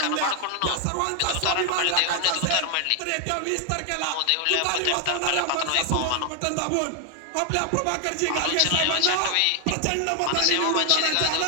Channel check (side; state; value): both; different; correlation 0.00